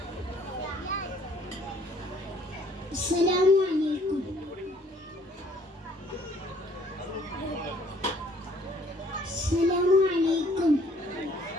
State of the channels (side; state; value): both; normal; correlation 0.60